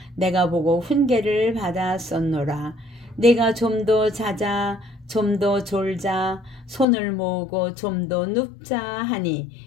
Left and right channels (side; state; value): right; drops out; at 6.9 s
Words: 내가 보고 훈계를 받았었노라. 내가 좀 더 자자 좀 더 졸자 손을 모으고 좀 더 눕자 하니